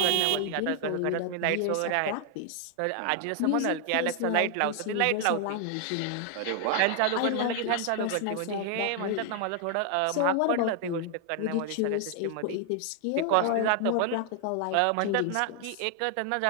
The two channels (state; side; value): different; both; correlation 0.00